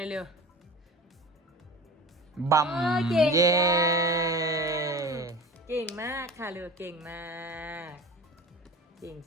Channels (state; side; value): normal; both; correlation 0.36